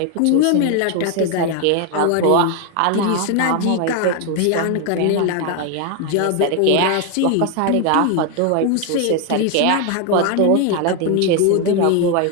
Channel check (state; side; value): different; both; correlation 0.01